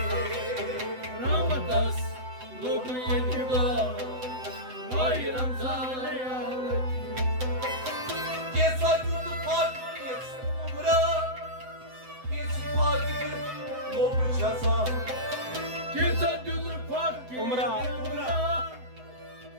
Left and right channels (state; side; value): late; left; 7.8 ms